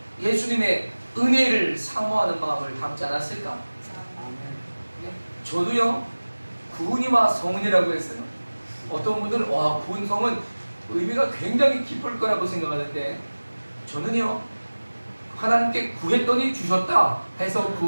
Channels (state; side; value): inverted; both; correlation -1.00